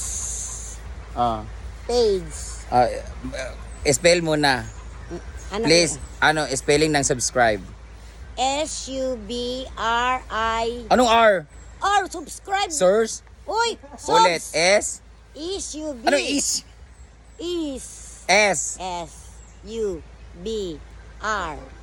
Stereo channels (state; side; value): identical; both; correlation 1.00